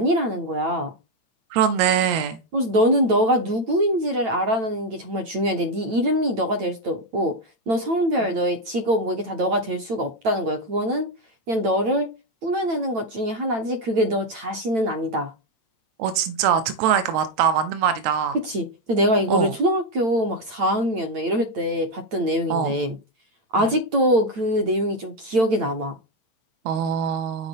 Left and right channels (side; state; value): left; late; 8.9 ms